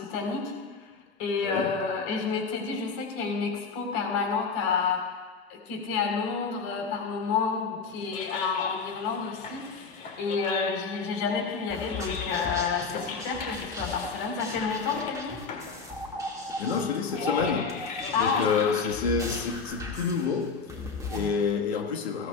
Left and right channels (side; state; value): right; quieter; 5.0 dB